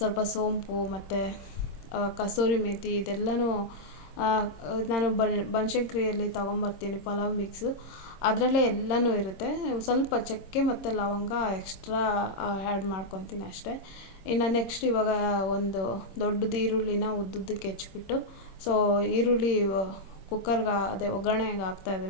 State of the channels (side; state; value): right; late; 26 ms